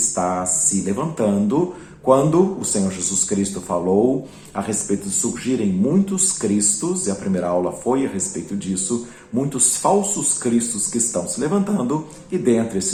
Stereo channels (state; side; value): identical; both; correlation 1.00